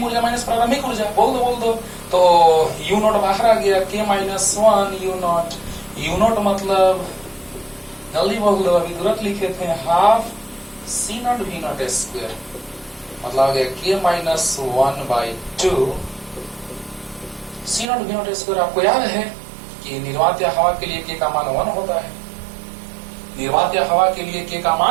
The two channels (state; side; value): drops out; left; at 17.9 s